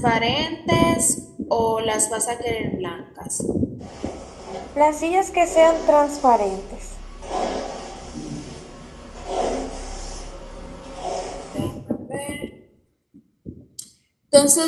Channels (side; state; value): both; identical; correlation 1.00